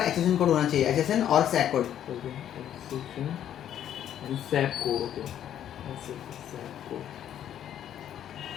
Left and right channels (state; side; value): quieter; right; 10.5 dB